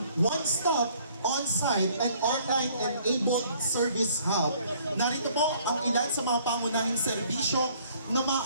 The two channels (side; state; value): both; inverted; correlation -0.59